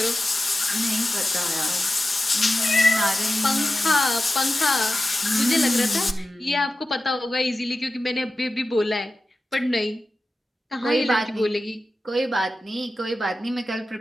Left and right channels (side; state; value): both; normal; correlation 0.93